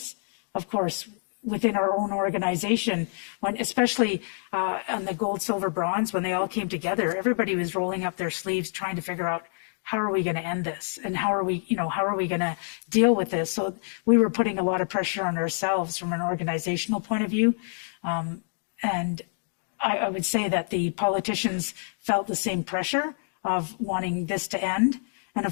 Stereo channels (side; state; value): right; silent; digital silence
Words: Of course, within our own organization, when especially on the gold, silver, bronze, when they all came together, everybody was rolling up their sleeves trying to figure out how are we going to end this and how are we going to deal with this. So we were putting a lot of pressure on ourselves from an organizational point of view. And I would say that the politicians felt the same pressure of wanting this to end. And